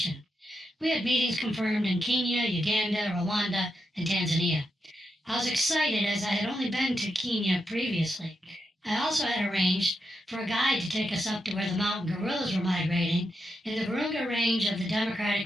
We had meetings confirmed in Kenya, Uganda, Rwanda, and Tanzania. I was excited as I had only been to Kenya previously. I also had arranged for a guide to take us up to where the mountain gorillas were migrating in the Virunga Range of the Democratic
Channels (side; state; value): both; normal; correlation 0.85